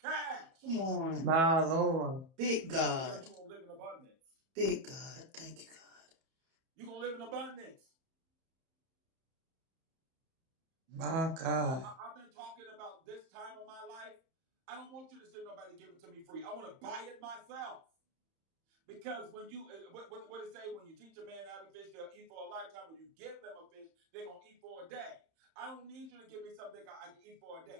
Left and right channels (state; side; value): late; left; 31 ms